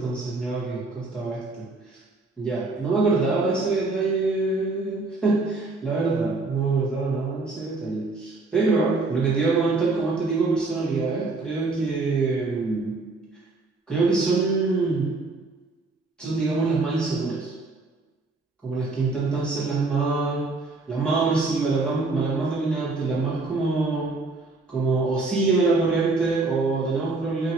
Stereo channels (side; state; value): left; quieter; 3.5 dB